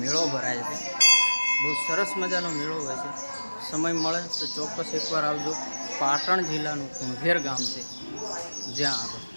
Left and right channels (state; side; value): inverted; both; correlation -1.00